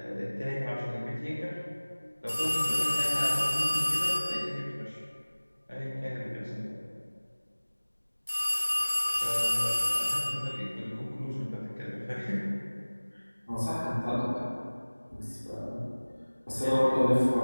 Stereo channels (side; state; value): both; inverted; correlation -1.00